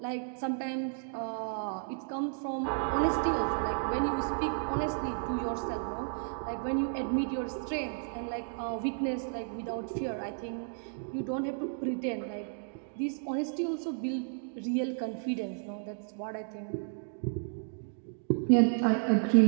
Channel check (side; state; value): left; silent; digital silence